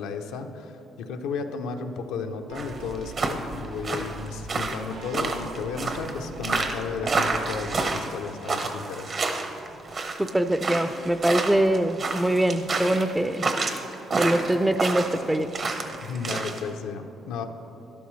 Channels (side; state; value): both; normal; correlation 0.84